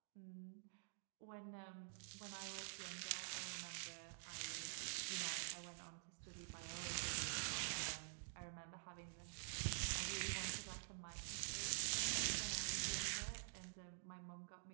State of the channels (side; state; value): left; silent; digital silence